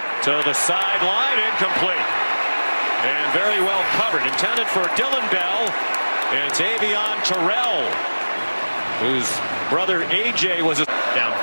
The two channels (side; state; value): both; inverted; correlation -1.00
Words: to the sideline, incomplete. And very well covered. Intended for Dylan Bell. And it's Avieon Terrell, whose brother AJ was